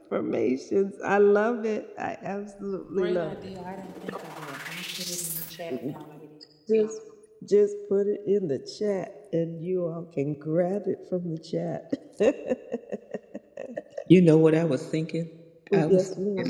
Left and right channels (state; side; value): identical; both; correlation 1.00